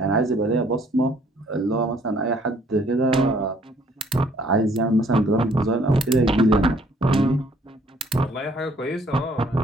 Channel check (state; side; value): normal; both; correlation 0.62